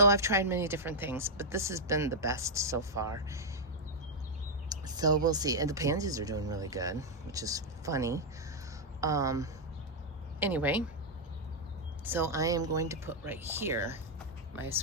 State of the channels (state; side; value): normal; both; correlation -0.03